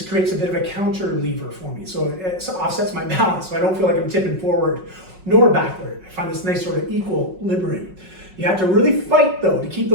creates a bit of a counter lever for me. So it offsets my balance, so I don't feel like I'm tipping forward nor backward. I find this nice sort of equilibrium. You have to really fight though to keep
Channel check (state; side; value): late; left; 5.4 ms